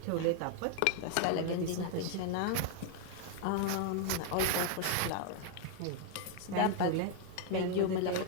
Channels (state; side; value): different; both; correlation 0.00